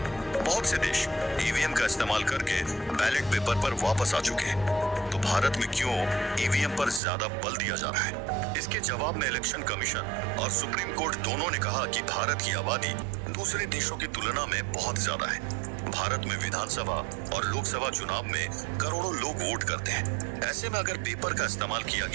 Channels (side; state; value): left; drops out; at 7.0 s